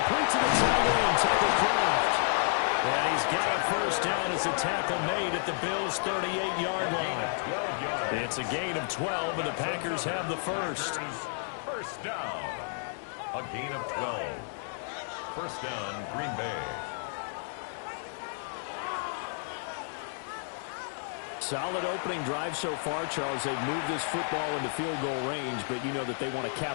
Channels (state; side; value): silent; right; digital silence